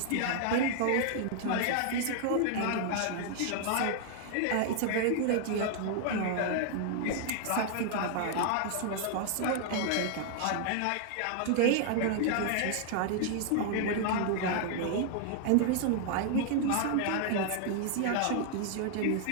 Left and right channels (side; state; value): both; different; correlation 0.00